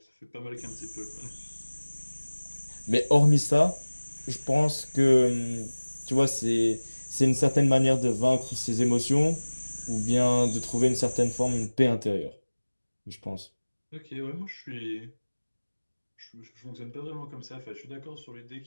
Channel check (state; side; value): inverted; both; correlation -1.00